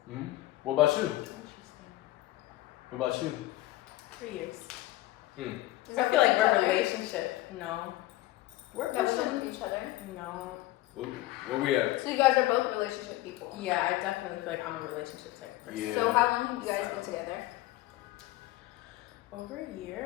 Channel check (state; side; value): quieter; right; 17.0 dB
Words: Mm-hmm. What about you? Interesting. What about you? 3 years. Hmm. Is I that feel with like each we're a other? relationship. No. We're That was pushing. with each other? No. Where we at? So you guys are both relationship people. Yeah, I definitely feel like I'm a relationship type of person. Yeah. So how long have you guys been together? Over a